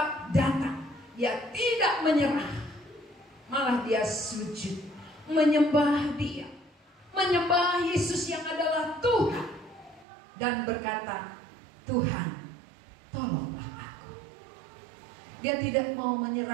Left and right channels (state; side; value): drops out; left; at 10.1 s